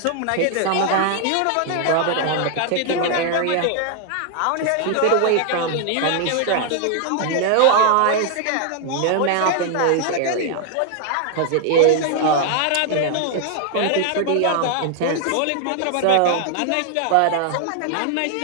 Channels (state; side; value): different; both; correlation 0.00